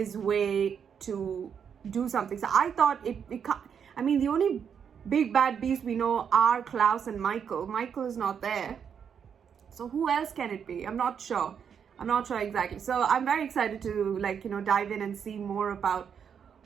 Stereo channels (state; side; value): quieter; left; 7.5 dB